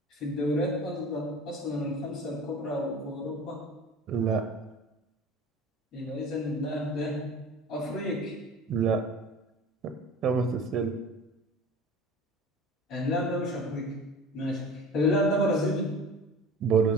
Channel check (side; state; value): both; normal; correlation 0.39